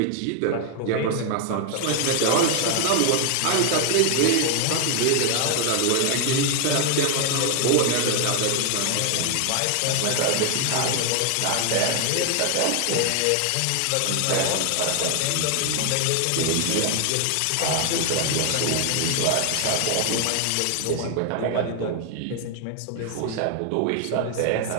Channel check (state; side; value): different; both; correlation 0.00